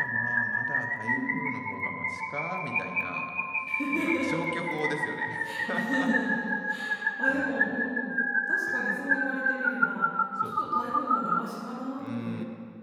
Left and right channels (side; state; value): both; identical; correlation 1.00